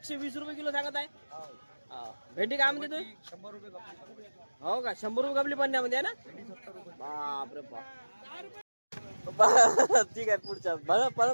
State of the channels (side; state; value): both; inverted; correlation -1.00